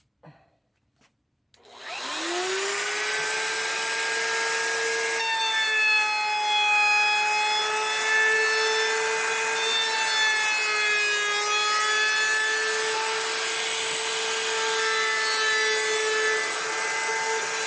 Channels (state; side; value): identical; both; correlation 1.00